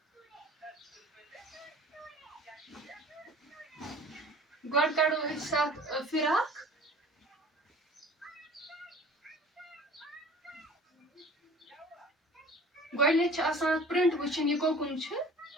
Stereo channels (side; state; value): both; normal; correlation 0.46